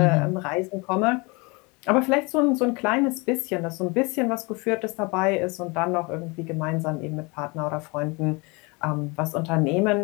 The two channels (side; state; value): right; quieter; 27.8 dB